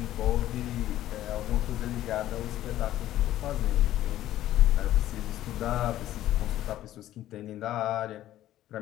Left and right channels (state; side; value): quieter; right; 13.5 dB